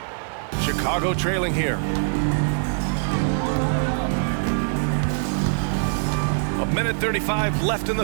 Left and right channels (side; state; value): left; silent; digital silence